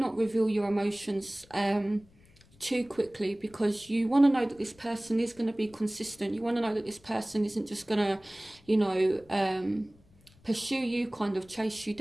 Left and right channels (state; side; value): noise; left; rumble, 28 dB below the sound